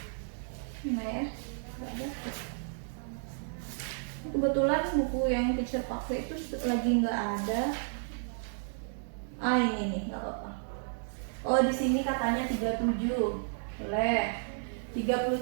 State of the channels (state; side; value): silent; left; digital silence